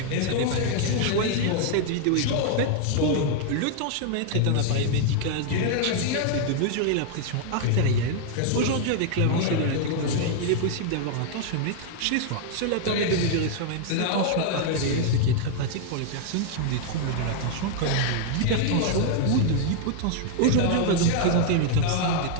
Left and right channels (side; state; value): both; different; correlation 0.00